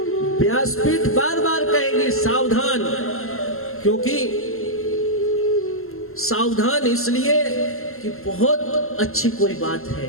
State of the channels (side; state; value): right; late; 0.62 ms